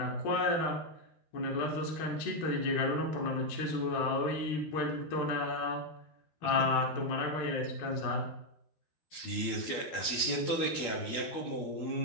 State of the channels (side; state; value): right; late; 12 ms